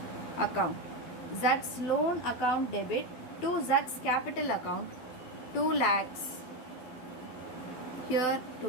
account. Z's loan account debit to Z's capital account, 2 lakhs. Here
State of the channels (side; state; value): right; late; 12 ms